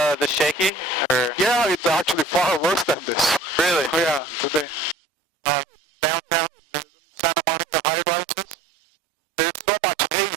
shaky, or? Yeah, it's actually far worse than this. Really? Yeah, today. Downtown, the Santa Monica high-rises, there's so much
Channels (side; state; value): left; drops out; at 5.0 s